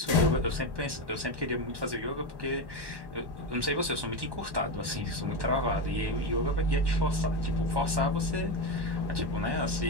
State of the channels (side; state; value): left; late; 1.2 ms